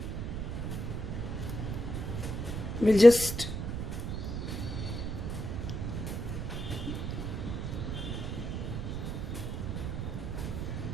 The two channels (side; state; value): right; noise; rumble, 3 dB below the sound